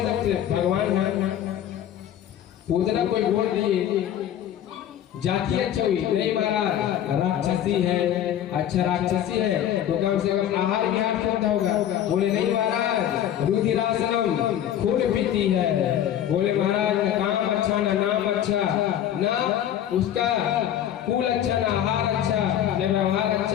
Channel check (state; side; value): quieter; right; 10.7 dB